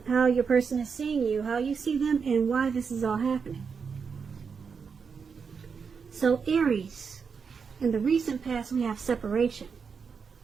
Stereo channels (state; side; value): quieter; left; 5.8 dB